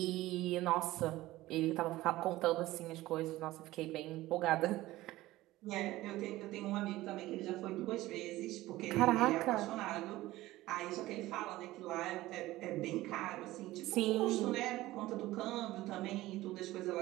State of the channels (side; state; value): left; quieter; 17.2 dB